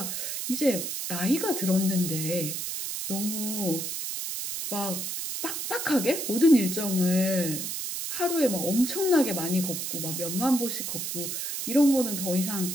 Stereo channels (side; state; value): right; noise; hiss, 4 dB below the sound